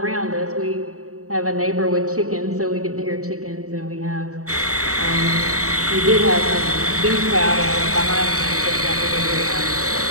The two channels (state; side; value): late; left; 0.65 ms